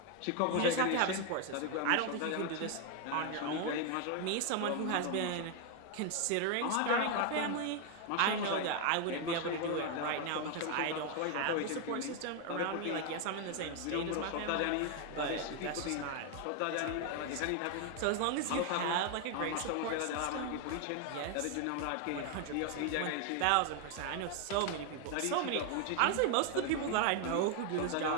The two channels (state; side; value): different; both; correlation 0.01